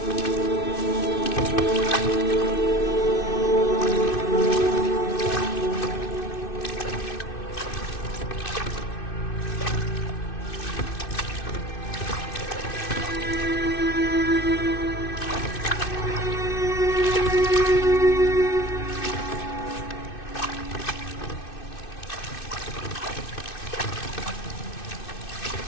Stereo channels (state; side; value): late; right; 2.6 ms